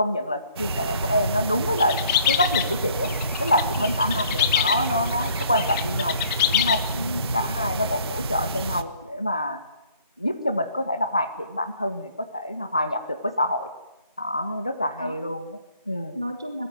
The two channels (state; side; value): inverted; both; correlation -0.59